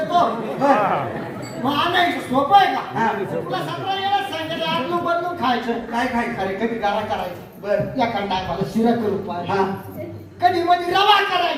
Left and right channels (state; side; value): identical; both; correlation 1.00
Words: मग आणायचं सोपं आहे का? तुला 17 वेळेस सांगेल आदलून बदलून खायचं. काय खायचं? अरे कधी गारा करायचं. बर एखाद टायमाला शिरा करू पाहिजे. हा कधी मध्ये रवा